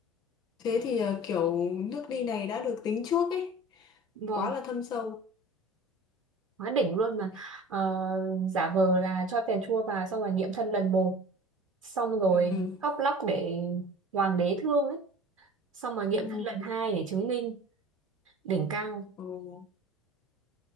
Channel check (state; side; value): normal; both; correlation 0.41